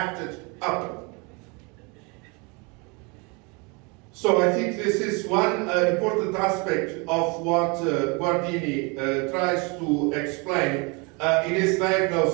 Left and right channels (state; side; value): quieter; left; 30.1 dB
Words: upon. So I think this is one important aspect of what Guardini tries to explain in his